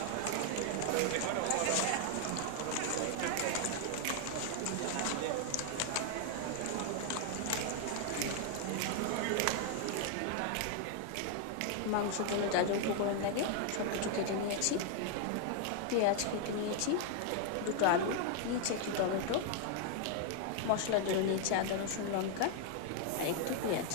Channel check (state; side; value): different; both; correlation 0.00